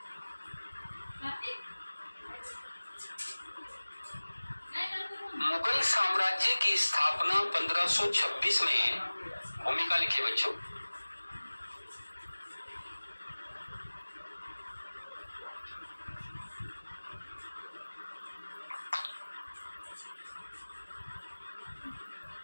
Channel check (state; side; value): inverted; both; correlation -1.00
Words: मुगल साम्राज्य की स्थापना 1526 में, भूमिका लिखिए बच्चों।